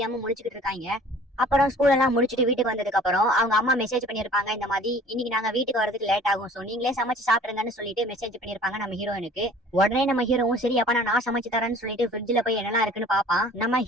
முடிச்சுக்கிட்டு இருக்காங்க. அப்புறம் ஸ்கூல் எல்லாம் முடிச்சுட்டு வீட்டுக்கு வந்ததுக்கு அப்புறம் அவங்க அம்மா மெசேஜ் பண்ணிருப்பாங்க. இந்த மாதிரி இன்னைக்கு நாங்க வீட்டுக்கு வரதுக்கு லேட் ஆகும், சோ நீங்களே சமைச்சு சாப்பிடுங்கன்னு சொல்லிட்டு மெசேஜ் பண்ணிருப்பாங்க நம்ம ஹீரோயினுக்கு. உடனே நம்ம ஹீரோவும் சரி அப்ப நான் சமைச்சு தரேன்னு சொல்லிட்டு ஃப்ரிட்ஜ்ல போய் என்னெல்லாம் இருக்குன்னு பாப்பான். நம்ம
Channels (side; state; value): both; normal; correlation 0.49